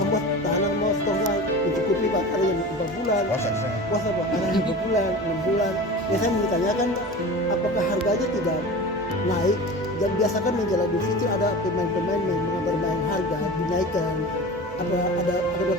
tahanan mau stoknya mencukupi Pak. Ada yang 4 bulan. Puasa Pak. Ada yang 2 bulan, 6 bulan. Ya saya menanyakan apakah harganya tidak naik? Dan biasakan menjelang Idul Fitri ada pemain-pemain yang bermain harga dinaikkan. Ada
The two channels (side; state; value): both; normal; correlation 0.33